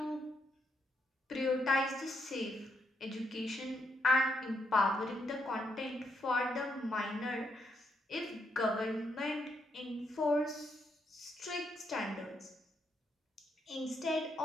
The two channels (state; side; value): normal; both; correlation 0.78